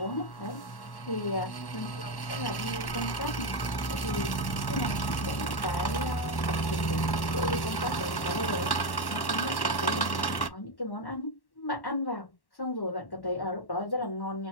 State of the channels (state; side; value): late; right; 1.1 ms